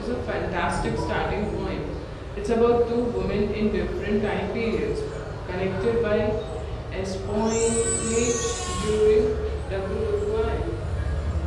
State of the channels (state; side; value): identical; both; correlation 1.00